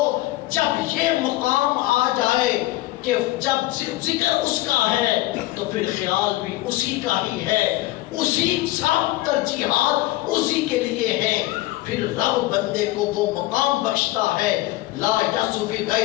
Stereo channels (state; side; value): quieter; right; 18.1 dB